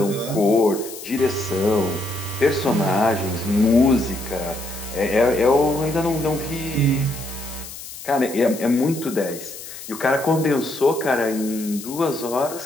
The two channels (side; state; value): left; noise; hiss, 13 dB below the sound